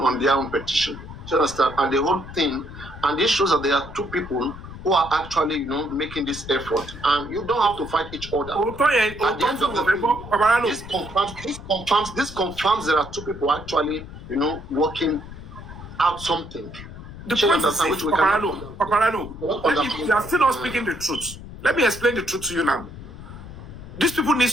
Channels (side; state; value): left; noise; rumble, 13 dB below the sound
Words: their own petition. Do you understand? And the whole thing, and this shows that there are two people who are actually, making this effort, and you don't have to fight each other. At the end of the day, this confirms there are two people actually, working out something. The point is, Paparano, you are still not speaking the truth. Let me explain the truth to you now. These people need